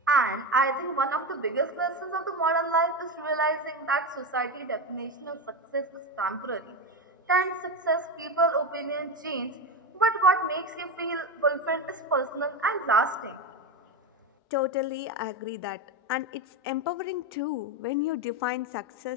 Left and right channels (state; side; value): normal; both; correlation 0.16